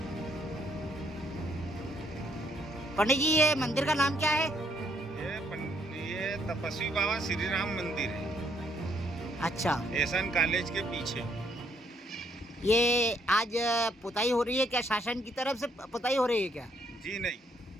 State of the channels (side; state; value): both; normal; correlation 0.70